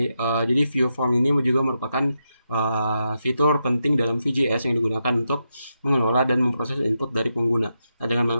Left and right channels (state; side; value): inverted; both; correlation -0.85